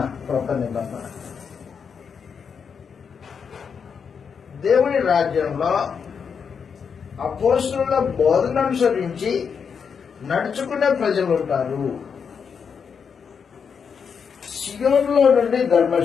దేవుని రాజ్యంలో అపోస్తలుల బోధన అనుసరించి నడుచుకునే ప్రజలు ఉంటారు. సియోనులో నుండి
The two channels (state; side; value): quieter; right; 6.4 dB